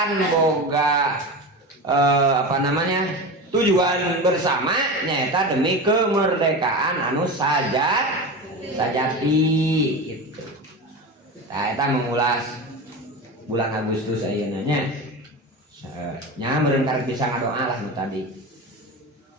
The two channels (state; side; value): normal; both; correlation 0.25